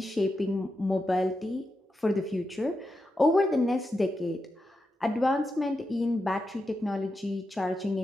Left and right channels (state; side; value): normal; both; correlation 0.88